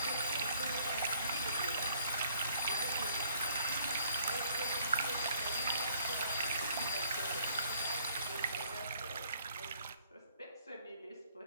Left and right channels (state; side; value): inverted; both; correlation -0.61